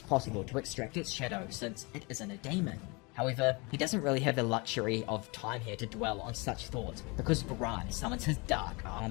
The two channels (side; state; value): right; quieter; 28.0 dB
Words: possible to extract its shadow since it isn't a demon. However, he doesn't really have the luxury of time here to dwell on such thoughts, because Baran summons his dark